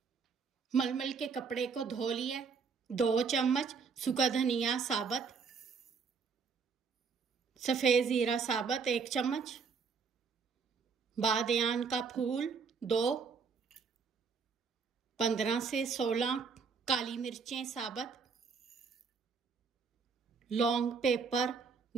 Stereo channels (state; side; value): quieter; left; 5.5 dB